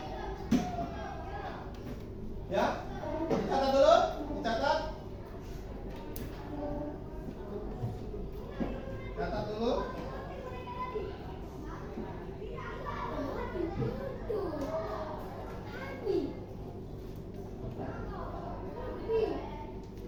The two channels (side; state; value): both; identical; correlation 1.00